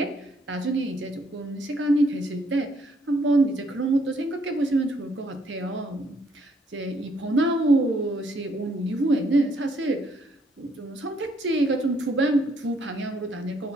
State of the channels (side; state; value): both; normal; correlation 0.69